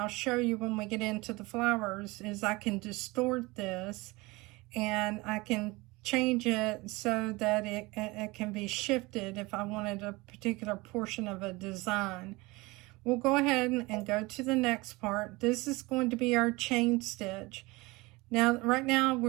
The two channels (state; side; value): quieter; left; 23.0 dB